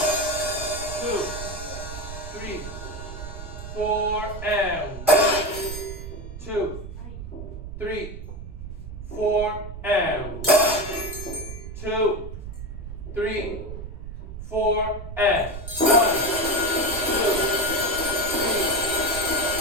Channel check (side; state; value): right; noise; rumble, 9 dB below the sound